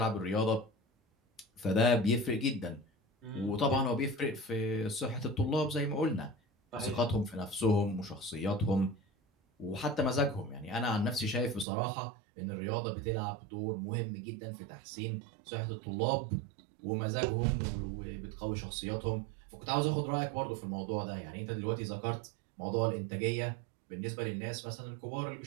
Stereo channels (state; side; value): drops out; left; at 11.7 s